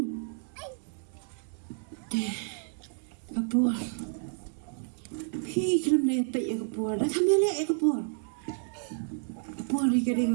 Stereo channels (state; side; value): silent; left; digital silence